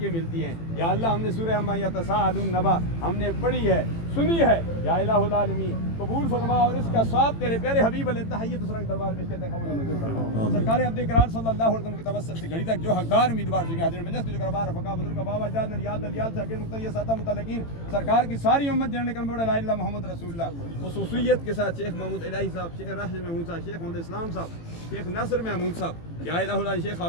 ملتی ہیں۔ یا اللہ ہم نے سورہ عما یتساءلون نبا ہم نے پڑھی ہے، سنی ہے، یا الہ العالمین قبول فرما اور اس کا ثواب تیرے پیارے حبیب علیہ تحیت سرنگ دربار میں کہتے ہیں قبول منظور فرما۔ سرکار عبد کرار صلی اللہ علیہ وسلم کے توسل سے گھڑی تک جو حقدار امیدوار ہیں حاضرین مجلس جو کربار رفقا بزرگ بابا جان نریال دلیال شاکر مقتدی ساتہ متعلقین سرکار کی ساری امت جننے کرم بڑا لا الہ محمد رسول اللہ، خصوصیت کے ساتھ شیخ محمود الہی صاحب، شیخ راشد محمود صاحب، شیخ محمد اسلام صاحب، شیخ ناصر محمود صاحب، یا الہ اللہ شیخ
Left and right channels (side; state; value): right; late; 18 ms